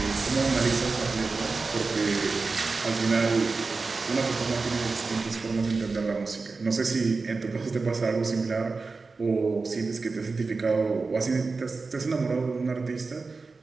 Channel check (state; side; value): quieter; left; 4.1 dB